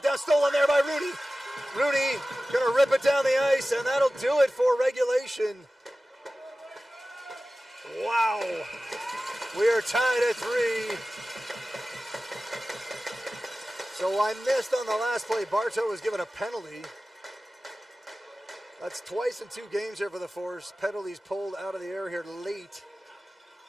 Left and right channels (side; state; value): both; normal; correlation 0.96